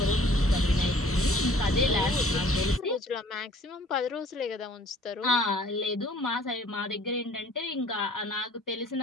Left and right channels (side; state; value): both; normal; correlation 0.54